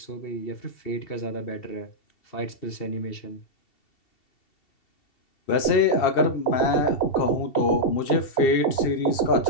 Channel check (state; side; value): late; right; 2.7 ms